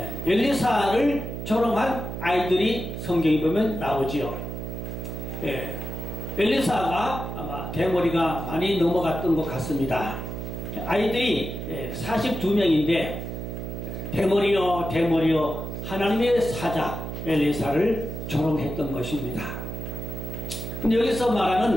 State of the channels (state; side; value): noise; right; hum, 6 dB below the sound